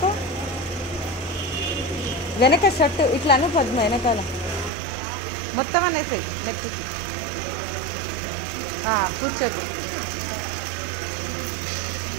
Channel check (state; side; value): drops out; left; at 4.7 s